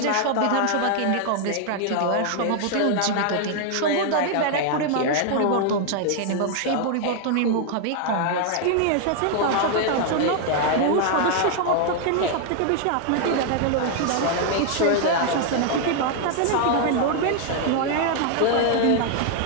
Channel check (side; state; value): both; different; correlation 0.00